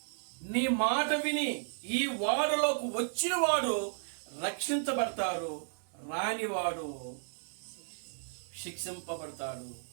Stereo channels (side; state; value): left; silent; 55 dB below the other